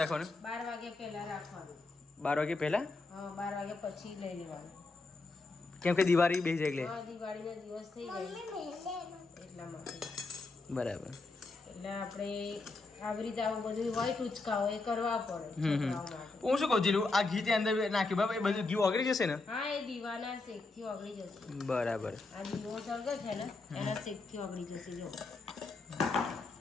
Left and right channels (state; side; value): quieter; right; 3.5 dB